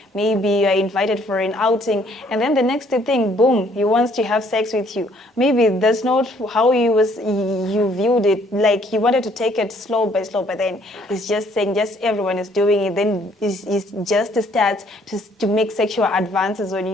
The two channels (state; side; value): normal; both; correlation 0.63